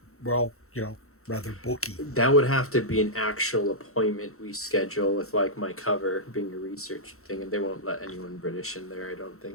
well, rather bulky. That would have to be an actual appointment we schedule with like my cover being a research thing, and they won't let anyone British in there, I don't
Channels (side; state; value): right; late; 0.63 ms